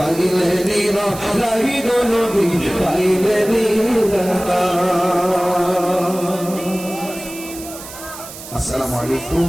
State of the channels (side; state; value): right; noise; hiss, 14 dB below the sound